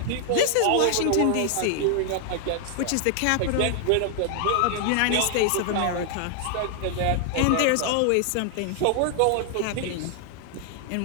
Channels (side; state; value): both; different; correlation 0.00